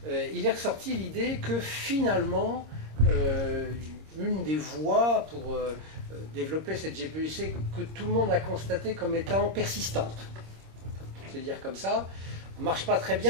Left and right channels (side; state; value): left; late; 26 ms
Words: il est ressorti l'idée que finalement, une des voies pour développer cette GPEC que tout le monde a constaté comme étant persistante. Je vais dire comme ça, ne marche pas très